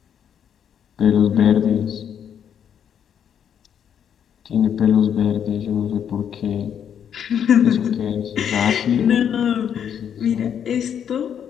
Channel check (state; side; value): quieter; right; 8.6 dB